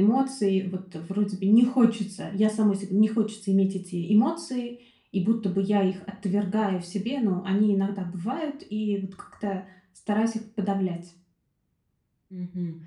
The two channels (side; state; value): both; identical; correlation 1.00